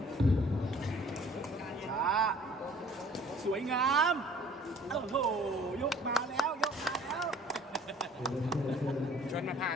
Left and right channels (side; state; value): both; normal; correlation 0.53